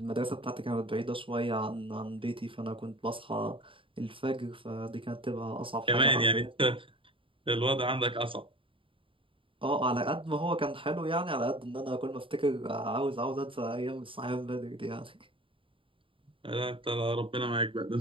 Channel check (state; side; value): late; left; 0.25 ms